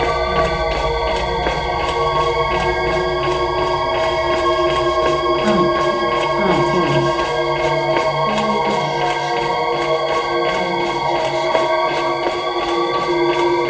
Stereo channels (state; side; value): identical; both; correlation 1.00